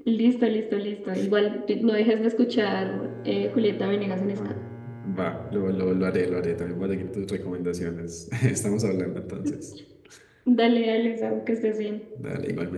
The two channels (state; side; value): identical; both; correlation 1.00